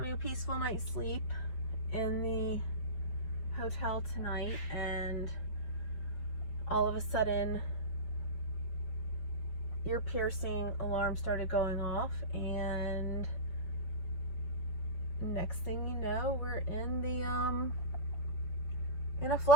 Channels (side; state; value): right; late; 5.8 ms